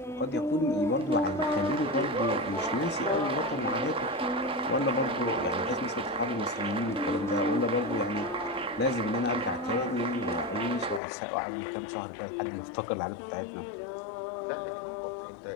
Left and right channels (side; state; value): right; drops out; at 11.0 s